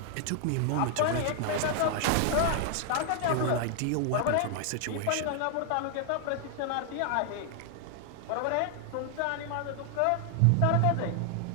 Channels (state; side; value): different; both; correlation 0.00